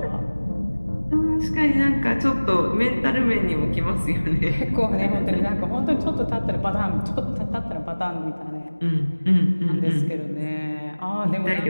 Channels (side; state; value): both; inverted; correlation -1.00